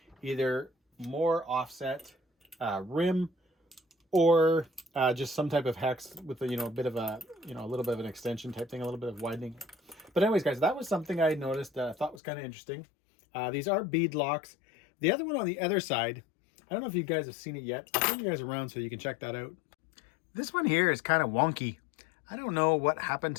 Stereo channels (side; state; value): right; drops out; at 12.2 s